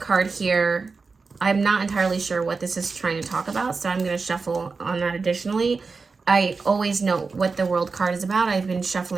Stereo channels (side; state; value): left; quieter; 4.4 dB